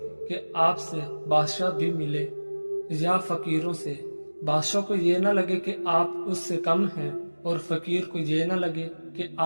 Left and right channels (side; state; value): both; inverted; correlation -1.00